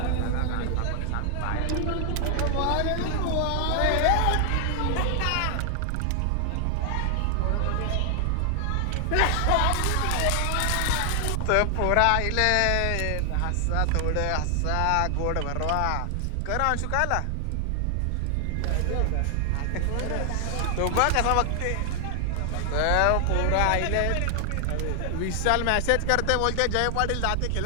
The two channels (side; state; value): both; different; correlation 0.00